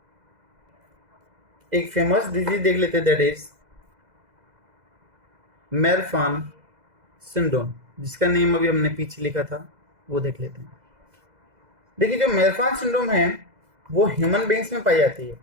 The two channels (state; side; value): late; left; 2.0 ms